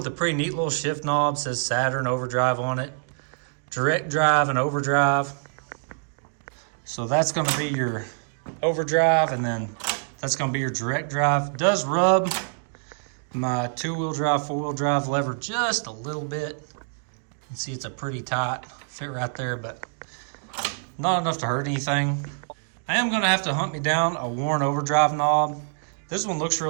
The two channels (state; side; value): silent; left; digital silence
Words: a pretty neat little shift knob. It says Saturn Overdrive on it. Direct drive and overdrive. So that's going to be your overdrive, and then That's going to be your direct drive. It does rub my 2-wheel drive, 4-wheel drive lever just a little bit. You can see it's a pretty tight fit right there, but not enough to hurt anything. I am going to have to hunt me down a Warren Overdrive knob. This one looks